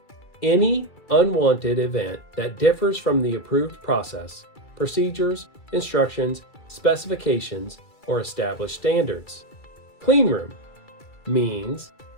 any unwanted event that differs from the approved process, procedures, instructions, specifications, or established standards. Cleanroom means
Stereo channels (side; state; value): right; late; 2.3 ms